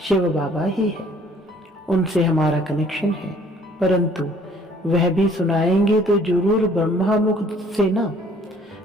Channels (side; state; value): both; normal; correlation 0.58